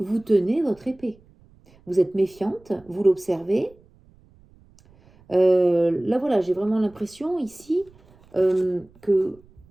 tenez votre épée. Vous êtes méfiante, vous l'observez. Là, voilà, j'ai vraiment l'impression ici que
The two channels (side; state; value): right; noise; rumble, 29 dB below the sound